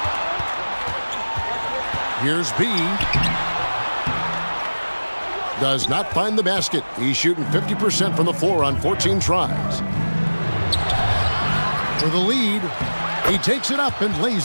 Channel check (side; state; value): both; inverted; correlation -1.00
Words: Here's B. Does not find the basket. He's shooting 50% from the floor on 14 tries. For the lead, he takes it up and